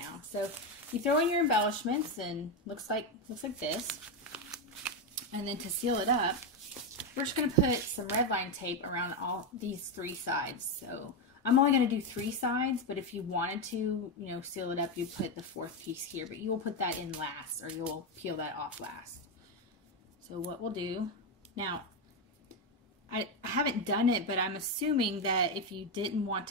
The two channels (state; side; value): normal; both; correlation 0.09